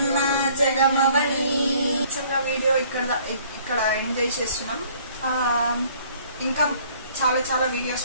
నా జగమవని. వీడియో ఇక్కడ ఎండ్ చేసేస్తున్నాం. ఇంకా చాలా చాలా వీడియోస్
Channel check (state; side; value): inverted; both; correlation -0.57